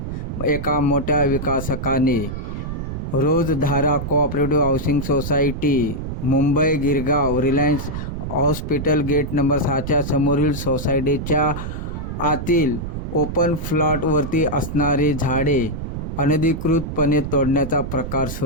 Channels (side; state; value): right; noise; rumble, 6 dB below the sound